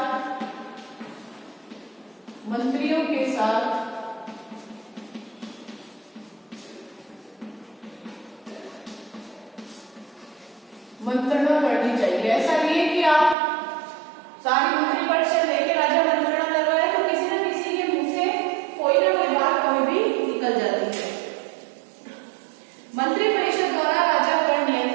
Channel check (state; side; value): drops out; left; at 13.4 s